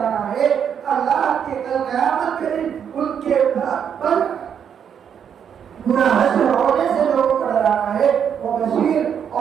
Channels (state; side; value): quieter; left; 8.1 dB